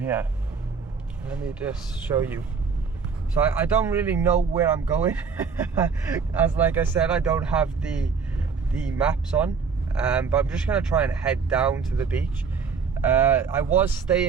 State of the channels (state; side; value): quieter; left; 5.5 dB